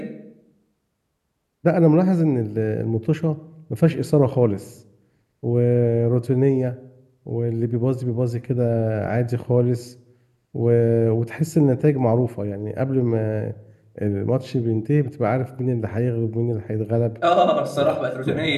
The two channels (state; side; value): identical; both; correlation 1.00